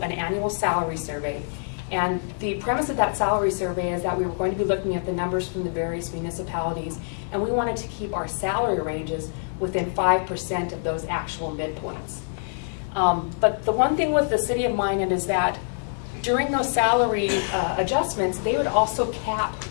an annual salary survey. And the premise of that salary survey is that we were going to be looking at the numbers from the various municipalities, and we wanted to keep our salary ranges within 5% of those actual midpoints. But the one thing with the City of Minot is that during those salary adjustments, they would also cap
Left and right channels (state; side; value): silent; right; digital silence